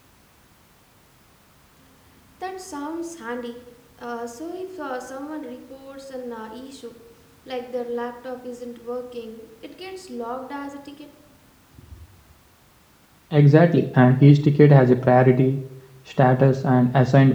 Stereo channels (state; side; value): identical; both; correlation 1.00